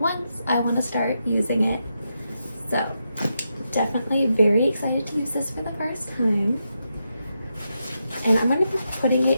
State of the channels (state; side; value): inverted; both; correlation -0.85